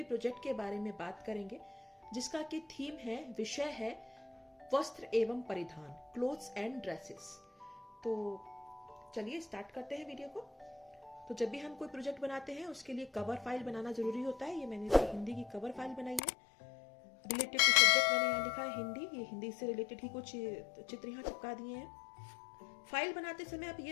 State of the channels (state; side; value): drops out; right; at 16.2 s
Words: प्रोजेक्ट के बारे में बात करेंगे, जिसका की थीम है, विषय है वस्त्र एवं परिधान, क्लोथ्स एंड ड्रेसेस। तो चलिए स्टार्ट करते हैं वीडियो को। तो जब भी हम कोई प्रोजेक्ट बनाते हैं उसके लिए कवर फाइल बनाना जरूरी होता है। ये मैंने हिंदी की कवर फाइल बनाई है। रिलेटेड टू सब्जेक्ट मैंने यहाँ लिखा है हिंदी। ये हिंदी से रिलेटेड ही कुछ चित्र यहाँ चिपका दिए हैं। फाइल बनाते समय आप